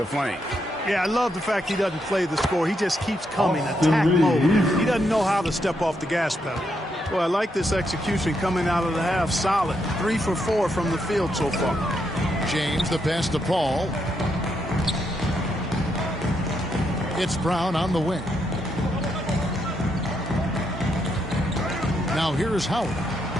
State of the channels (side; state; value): both; normal; correlation 0.79